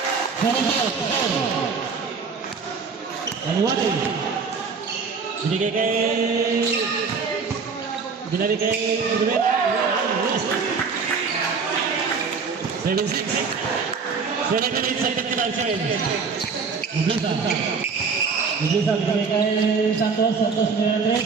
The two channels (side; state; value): left; quieter; 5.2 dB